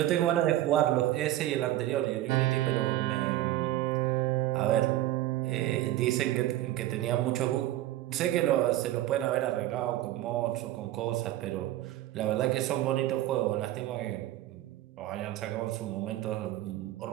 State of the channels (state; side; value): quieter; left; 14.6 dB